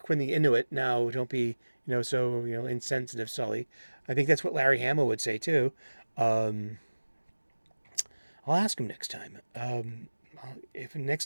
the Inuit. Now, don't be, so, insensitive, Sully. I think that's what Larry Hama would say too. Um, I'll ask him next time. If next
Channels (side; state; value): both; inverted; correlation -1.00